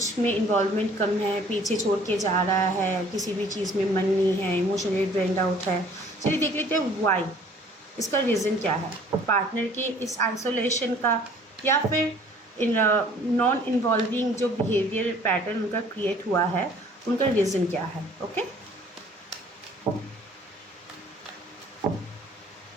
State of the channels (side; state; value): both; normal; correlation 0.54